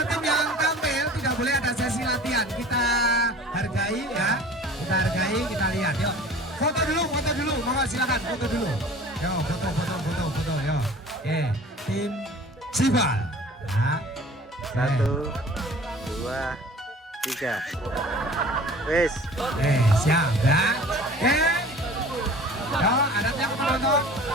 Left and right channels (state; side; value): normal; both; correlation 0.44